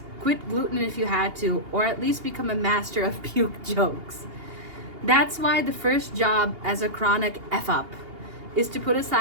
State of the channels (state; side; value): late; left; 2.8 ms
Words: quit gluten if you had to, or at least become a master of puke jokes. That's why the first job as a chronic F-up is to put